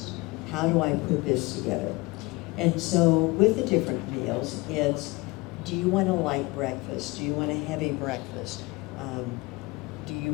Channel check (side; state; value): right; quieter; 23.5 dB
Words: How do I put this together? And so with the different meals, it's, do you want a light breakfast? Do you want a heavy breakfast?